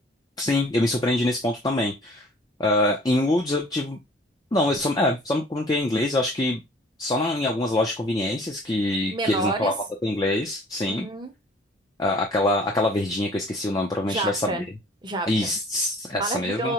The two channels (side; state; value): both; normal; correlation 0.51